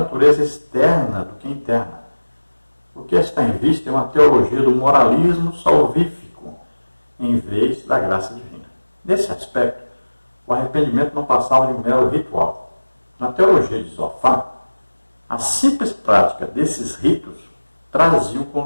externa do que interna. O que está em vista é uma teologia do moralismo salvífico, em vez da graça divina. Nesse aspecto, o arrependimento não passava de um mero ritual. Na teologia de Zofar, a simples prática desses ritos traziam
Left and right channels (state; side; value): inverted; both; correlation -1.00